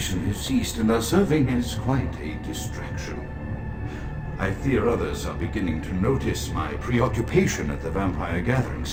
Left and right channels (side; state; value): both; identical; correlation 1.00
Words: has ceased and are serving as quite a distraction. I fear others are beginning to notice my preoccupation at the vampire